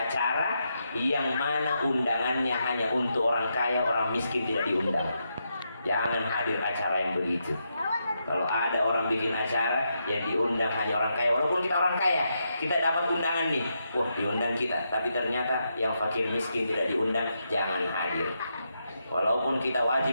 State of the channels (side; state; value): both; inverted; correlation -0.83